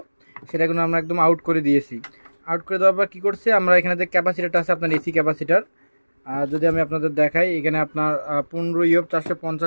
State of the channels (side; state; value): both; inverted; correlation -1.00